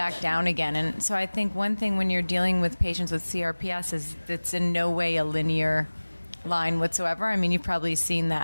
down again. And so I think one thing when you're dealing with patients with CRPS is it's in no way a linear line whatsoever. I mean, you've probably seen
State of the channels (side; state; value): both; inverted; correlation -1.00